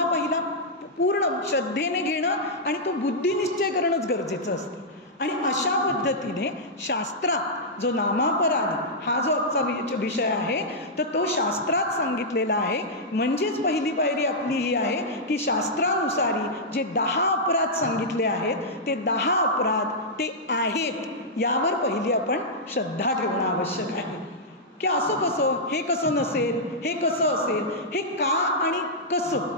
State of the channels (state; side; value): normal; both; correlation -0.09